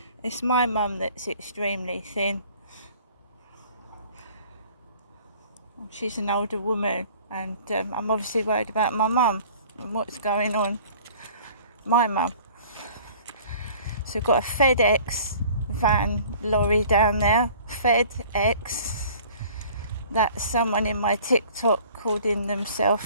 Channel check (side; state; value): both; inverted; correlation -0.49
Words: It's my mum that's extremely thin. She's an older woman and I'm obviously worried about my mum and what's going on. My mum. So we've got a FedEx van lorry down there. FedEx. That's someone in my TikTok called in themselves